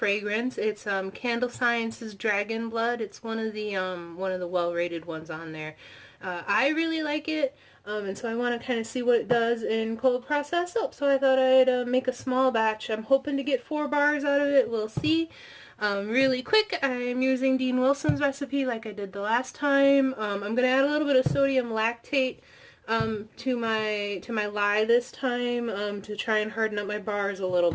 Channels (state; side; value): identical; both; correlation 1.00